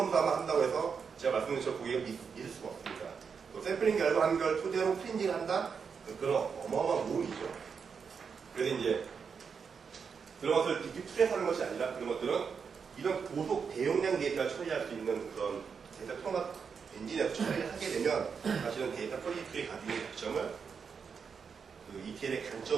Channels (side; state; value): left; quieter; 6.1 dB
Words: 한다고 해서 제가 말씀드린 것처럼 고객을 믿을 수가 없습니다. 또 샘플링 결과한 걸 토대로 클리닝을 한다? 그런 어마어마한 모험이죠. 그래서 이제 그런 것을 DQ2에서 하는 것이 아니라 그런 것들은 이런 고속 대용량 데이터를 처리할 수 있는 그런 데이터 통합 엔진에서 처리를 하게 되면 사실은 데이터 퀄리티의 가지고 있는 장점을 그 ETL의